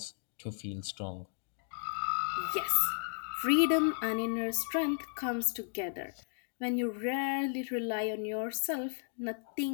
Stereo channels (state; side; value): silent; right; digital silence